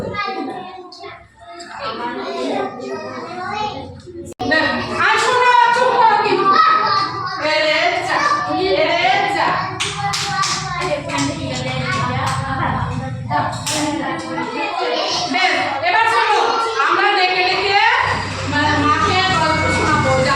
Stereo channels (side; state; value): both; identical; correlation 1.00